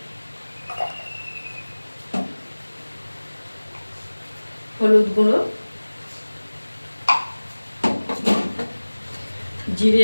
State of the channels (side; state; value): both; inverted; correlation -1.00